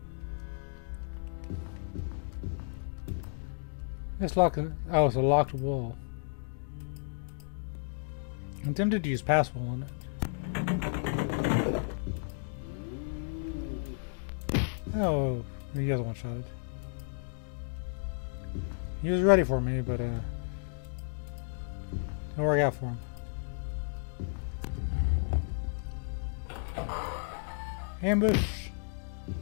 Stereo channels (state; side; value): silent; right; digital silence